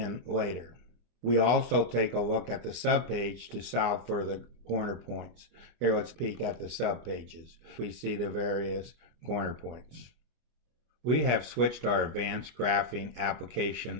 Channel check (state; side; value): late; left; 25 ms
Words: later. We also take a look at the subpage to solve for the corner points. Here, let's peek at the subpages. We see the various corner points. We have switched our advanced graphing